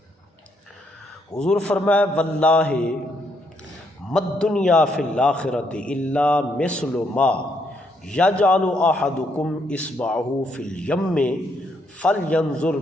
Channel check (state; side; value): normal; both; correlation 0.74